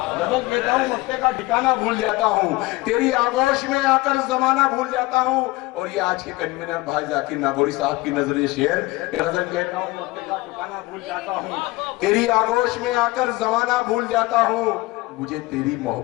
غزل کہتا ہوں مقتے کا ٹھکانہ بھول جاتا ہوں، تیری آغوش میں آ کر زمانہ بھول جاتا ہوں۔ اور یہ آج کے کنوینر بھائی ذاکر ناگوری صاحب کی نظر یہ شعر کہ غزل کہتا ہوں مقتے کا ٹھکانہ بھول جاتا ہوں، تیری آغوش میں آ کر زمانہ بھول جاتا ہوں، مجھے تیری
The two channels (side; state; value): right; quieter; 21.1 dB